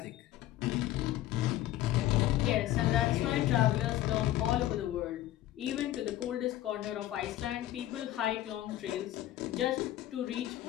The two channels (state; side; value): quieter; right; 14.0 dB